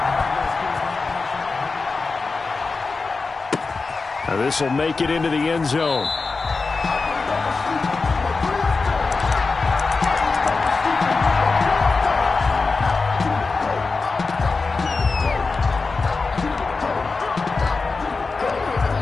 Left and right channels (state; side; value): quieter; right; 4.1 dB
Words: Now this will make it into the end zone.